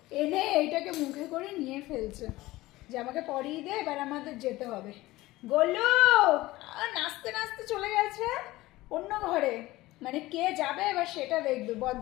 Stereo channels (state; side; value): quieter; right; 18.3 dB